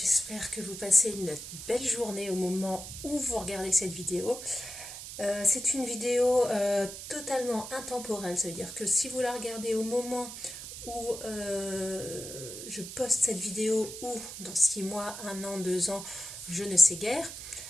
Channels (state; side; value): noise; right; hiss, 10 dB below the sound